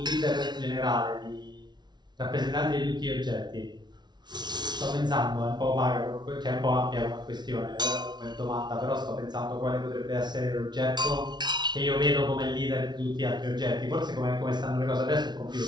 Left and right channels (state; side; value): late; left; 0.20 ms